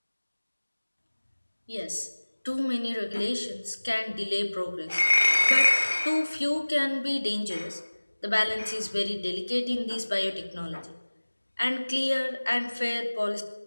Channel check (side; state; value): both; inverted; correlation -1.00